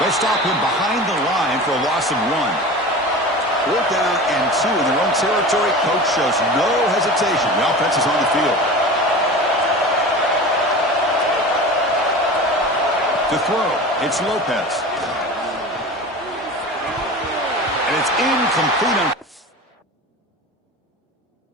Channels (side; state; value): both; normal; correlation 0.33